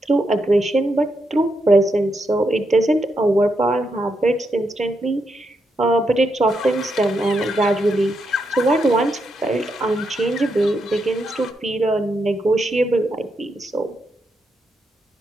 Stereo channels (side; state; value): both; normal; correlation 0.82